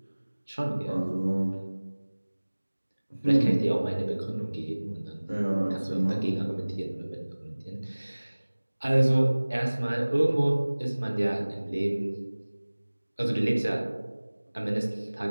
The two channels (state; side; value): inverted; both; correlation -1.00